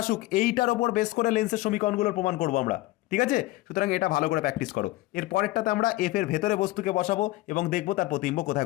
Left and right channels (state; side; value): quieter; right; 18.4 dB